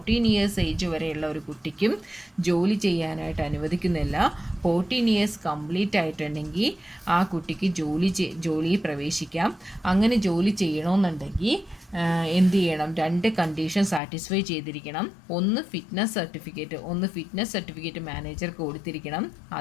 ഇയേഴ്സ് ഏജ് വരെയുള്ള ഒരു കുട്ടിക്കും ജോലി ചെയ്യാനായിട്ട് അനുവദിക്കുന്നില്ല. 14 ഇയേഴ്സ് കംപ്ലീറ്റ് ആയിട്ടുണ്ടെങ്കിൽ ആ കുട്ടിക്ക് ജോലിയിൽ പ്രവേശിക്കാം. അങ്ങനെ ജോലി ചെയ്യണമെന്നുണ്ടെങ്കിൽ എന്ത് ചെയ്യണം? 2 കണ്ടീഷൻ സാറ്റിസ്ഫൈ ചെയ്തിരിക്കണം. ഒന്ന് ഫിറ്റ്നസ് സർട്ടിഫിക്കറ്റ് മാനേജർക്ക് കൊടുത്തിരിക്കണം.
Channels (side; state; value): right; drops out; at 14.0 s